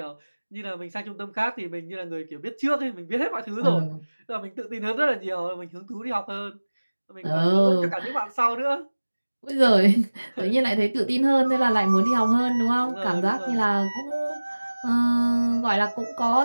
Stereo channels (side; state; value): both; inverted; correlation -1.00